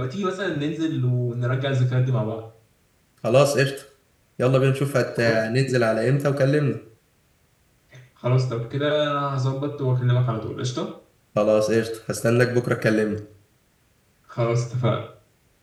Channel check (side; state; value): both; identical; correlation 1.00